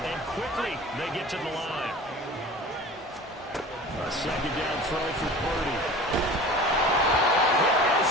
And quickly, they get to the line. A second down throw for Purdy.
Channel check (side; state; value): both; normal; correlation 0.39